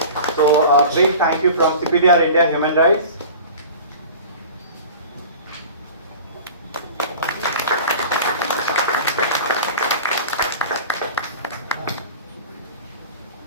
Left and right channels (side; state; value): both; inverted; correlation -0.38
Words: So a big thank you from CPDR India Human Rights.